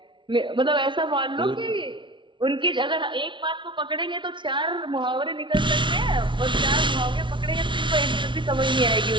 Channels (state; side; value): late; left; 0.24 ms